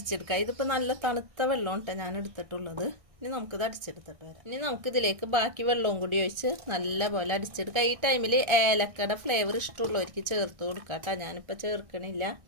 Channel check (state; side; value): late; left; 1.6 ms